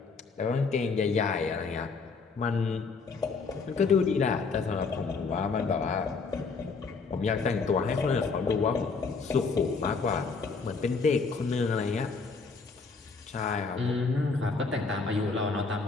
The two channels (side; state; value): right; quieter; 4.6 dB